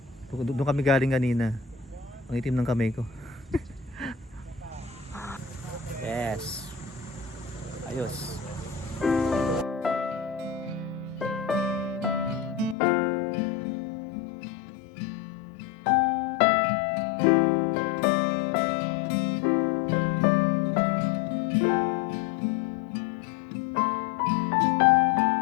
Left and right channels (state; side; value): drops out; right; at 12.8 s